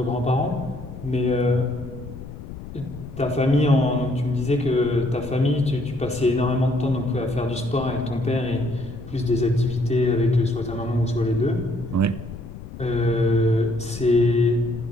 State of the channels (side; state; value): left; noise; rumble, 12 dB below the sound